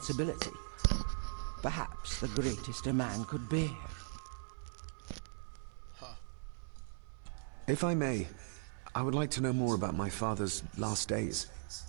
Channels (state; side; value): silent; left; 52 dB below the other